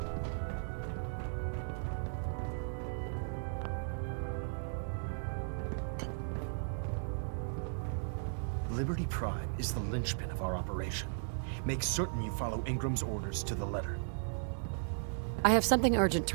Liberty Prime is the linchpin of our operation. Make certain you follow Ingram's orders to the letter. I have something urgent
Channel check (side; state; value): left; silent; digital silence